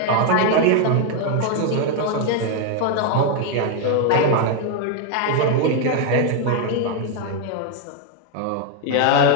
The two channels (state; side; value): different; both; correlation 0.01